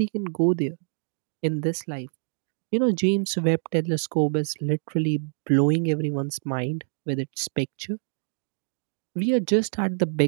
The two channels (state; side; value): silent; left; digital silence